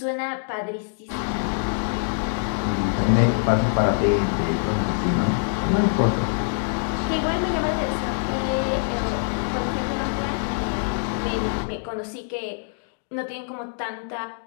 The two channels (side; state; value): right; silent; digital silence